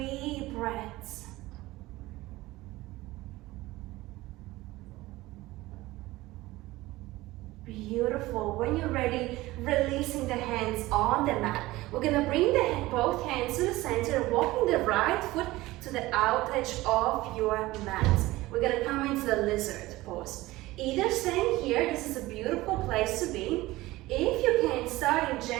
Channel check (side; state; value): left; quieter; 18.6 dB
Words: breaths. Beautiful. When you're ready, releasing the hands on the mat. We're gonna bring both hands to the center, walking the right foot to the out edge of your mat. We're gonna come into the lizard pose. Either staying here, this is a beautiful place to be. If you can, starting